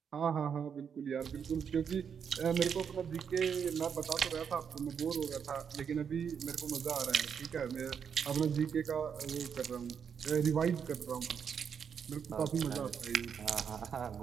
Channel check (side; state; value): left; quieter; 7.2 dB